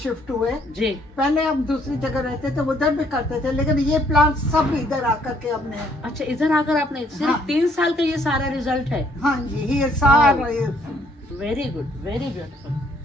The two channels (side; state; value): both; normal; correlation 0.66